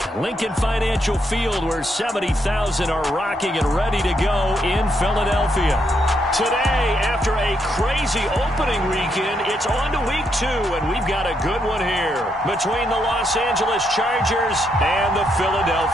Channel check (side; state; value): both; normal; correlation 0.78